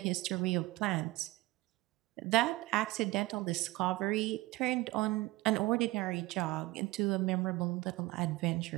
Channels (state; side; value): quieter; left; 20.3 dB